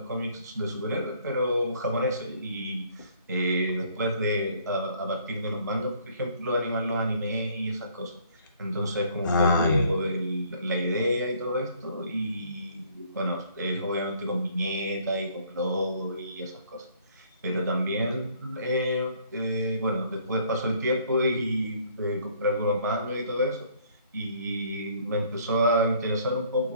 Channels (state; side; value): inverted; both; correlation -0.60